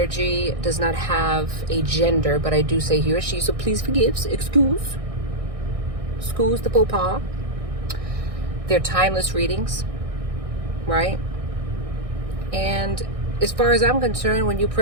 does not have a gender, but I do say he or she, so please excuse the faux pas. They're timeless readings, right? And as far as I'm concerned, when you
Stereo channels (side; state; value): left; late; 1.6 ms